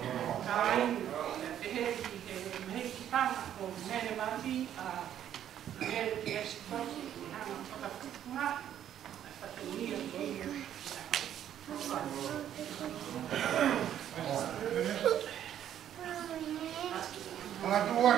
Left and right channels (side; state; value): left; quieter; 10.5 dB